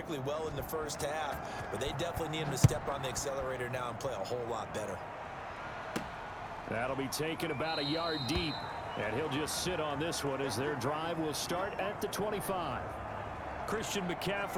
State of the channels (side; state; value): both; identical; correlation 1.00